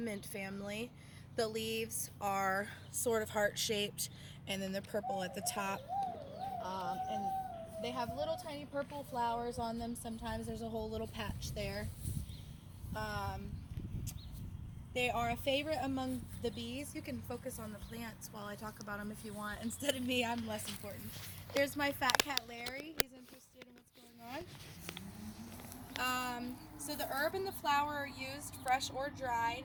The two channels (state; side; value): identical; both; correlation 1.00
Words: family, the leaves are sort of heart-shaped, and then they're purple at the top. And they have little tiny purple flowers on them. Sometimes there's a whole little patch there. Um, they are a favorite among the bees. You can focus on the plants while I talk about them if you want. Instead of me, I'm less important. There's my fat cat Larry. He's interested in what's going on. So the herb and the flower are used fresh or dried.